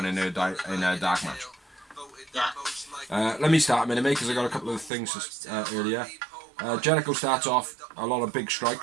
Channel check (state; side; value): drops out; left; at 4.9 s